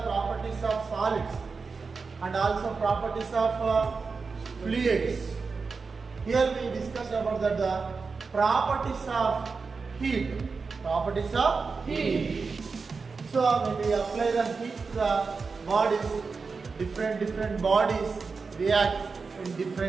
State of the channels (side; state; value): left; quieter; 4.7 dB